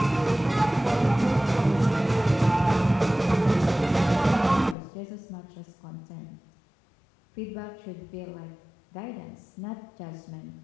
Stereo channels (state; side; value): drops out; right; at 4.8 s